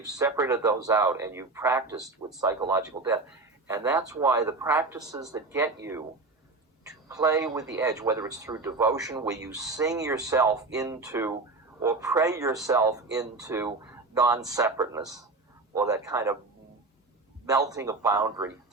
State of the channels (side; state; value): left; quieter; 3.5 dB